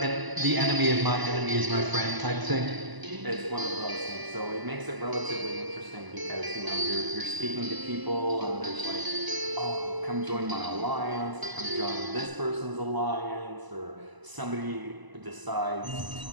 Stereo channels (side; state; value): left; late; 1.0 ms